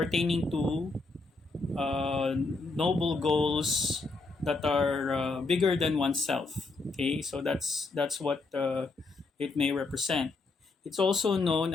to noble goals that are bigger than oneself. Okay, so that's what it may represent. It's also known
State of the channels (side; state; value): right; quieter; 3.6 dB